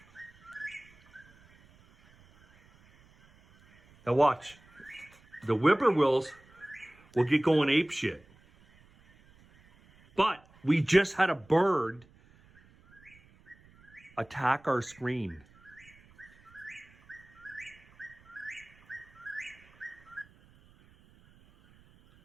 Now watch. The whippoorwills will get going apeshit. But we just had a bird attack our screen.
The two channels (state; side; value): noise; right; rumble, 28 dB below the sound